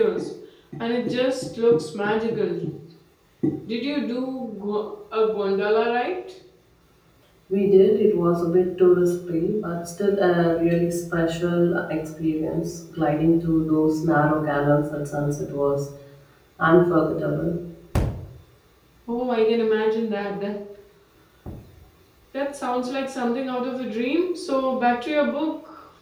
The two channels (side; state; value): both; identical; correlation 1.00